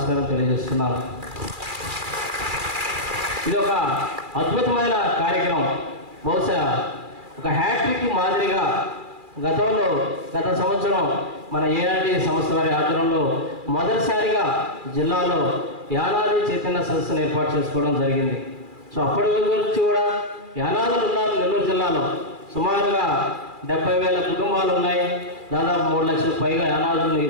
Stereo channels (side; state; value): left; late; 2.4 ms